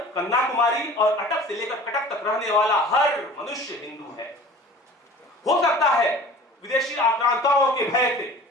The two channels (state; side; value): normal; both; correlation 0.44